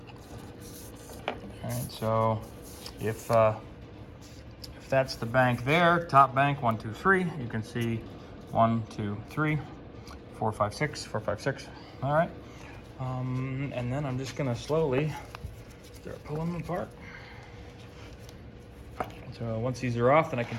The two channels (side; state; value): both; identical; correlation 1.00